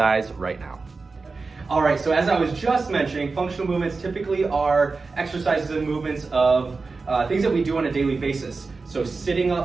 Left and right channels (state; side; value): quieter; left; 4.1 dB